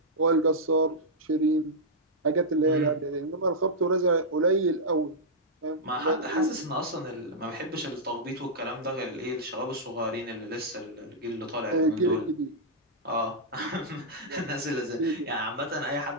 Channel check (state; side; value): normal; both; correlation -0.08